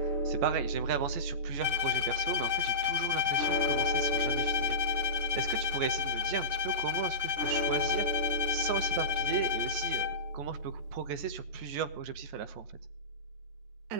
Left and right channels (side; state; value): left; late; 14 ms